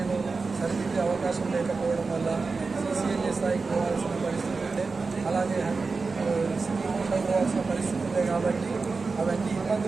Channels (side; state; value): left; quieter; 4.2 dB